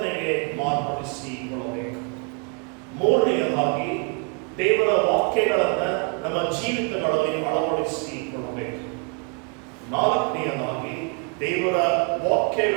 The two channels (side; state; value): left; quieter; 34.0 dB